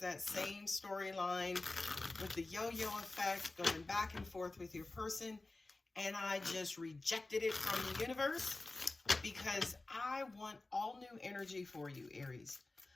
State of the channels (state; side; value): quieter; right; 3.1 dB